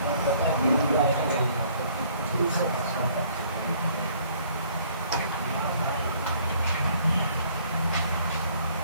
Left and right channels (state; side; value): inverted; both; correlation -0.60